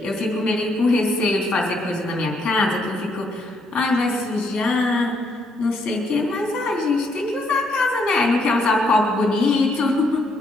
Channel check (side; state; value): both; normal; correlation 0.73